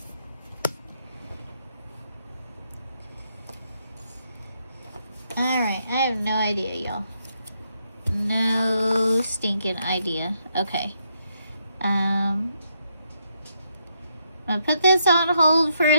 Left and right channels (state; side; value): inverted; both; correlation -0.77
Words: Alright, I have no idea, y'all. No stinking idea. Okay. I'm gonna put this on hold for